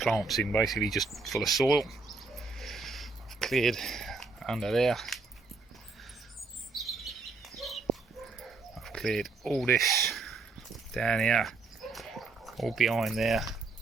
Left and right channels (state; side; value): quieter; left; 4.0 dB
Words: in, basically just full of soil. I've cleared under there. I've cleared all this down here, all behind there.